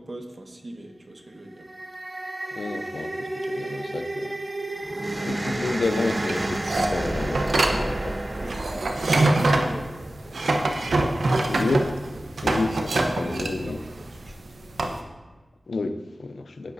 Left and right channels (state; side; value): normal; both; correlation 0.94